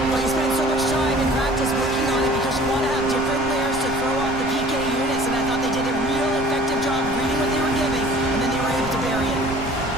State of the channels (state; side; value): noise; right; rumble, 10 dB below the sound